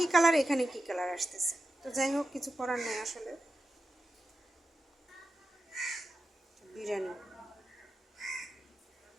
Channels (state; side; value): normal; both; correlation 0.90